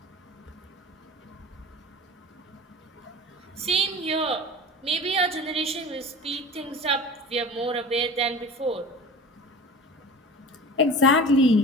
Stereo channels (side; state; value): both; normal; correlation 0.37